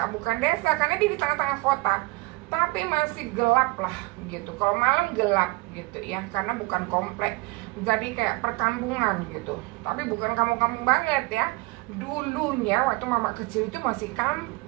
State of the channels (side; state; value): left; quieter; 23.6 dB